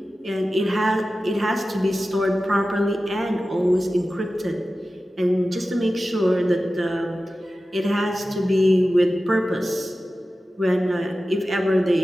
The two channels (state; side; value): normal; both; correlation 0.94